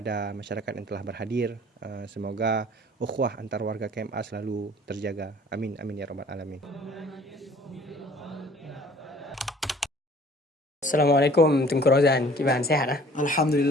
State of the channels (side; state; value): both; normal; correlation 0.52